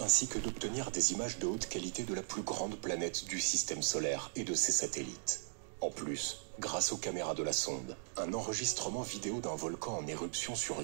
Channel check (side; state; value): left; silent; digital silence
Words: que d'obtenir des images de haute qualité de la plus grande planète du système solaire et de ses satellites. En plus, grâce aux caméras de la sonde, un enregistrement vidéo d'un volcan en éruption sur